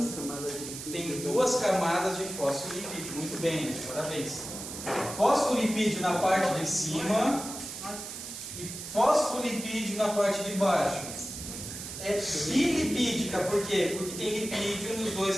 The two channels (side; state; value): right; noise; hiss, 9 dB below the sound